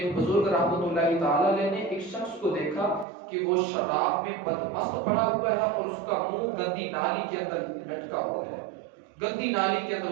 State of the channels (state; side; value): drops out; left; at 3.1 s